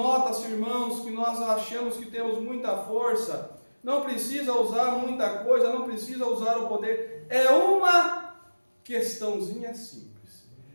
irmãos, que nós achamos que temos muita força. Não precisa usar muita coisa, não precisa usar o poder. É uma questãozinha simples.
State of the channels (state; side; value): inverted; both; correlation -1.00